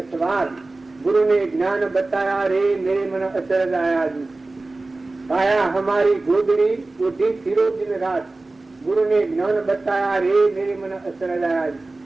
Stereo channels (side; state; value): left; quieter; 3.2 dB